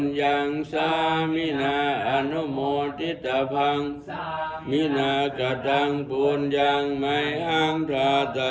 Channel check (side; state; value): both; identical; correlation 1.00